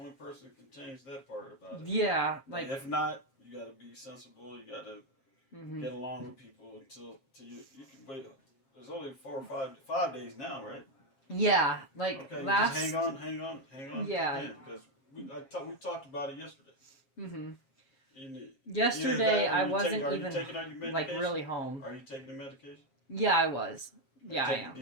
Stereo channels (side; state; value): right; late; 7.4 ms